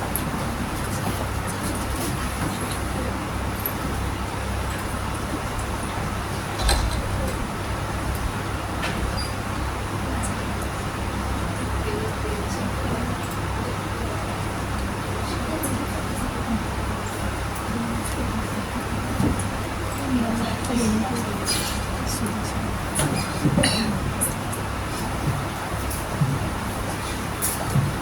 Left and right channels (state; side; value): identical; both; correlation 1.00